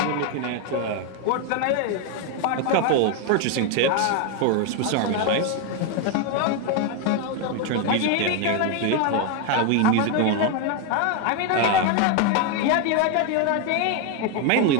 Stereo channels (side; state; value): both; different; correlation 0.01